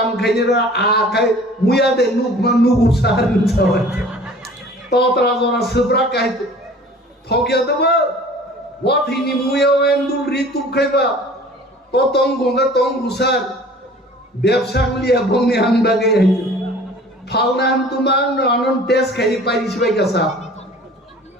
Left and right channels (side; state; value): both; normal; correlation 0.47